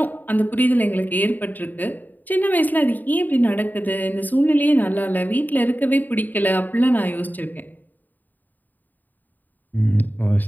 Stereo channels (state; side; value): late; right; 0.086 ms